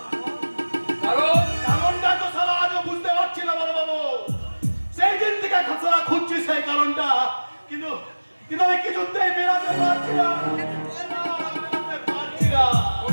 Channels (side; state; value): both; inverted; correlation -1.00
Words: কারণটা তো সারা আজও বুঝতে পারছি না বড় বাবু। সেই দিন থেকে সারা খুঁজছি সেই কারণটা, কিন্তু আমি কিছুতেই মেলাতে পারছি না।